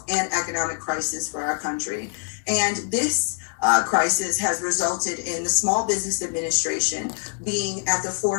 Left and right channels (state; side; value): silent; right; 62 dB below the other